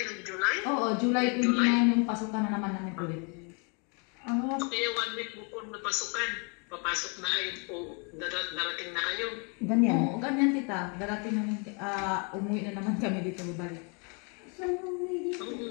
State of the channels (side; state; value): right; quieter; 35.4 dB